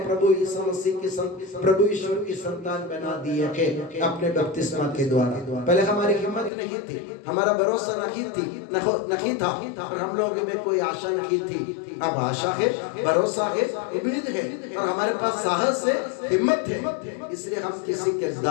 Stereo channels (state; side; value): drops out; right; at 6.5 s